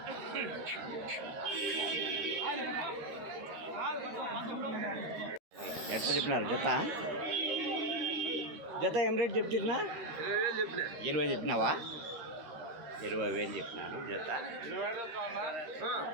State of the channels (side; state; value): left; late; 13 ms